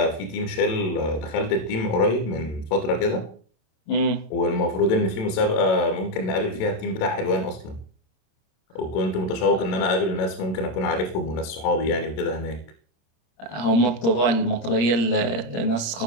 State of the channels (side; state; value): right; late; 27 ms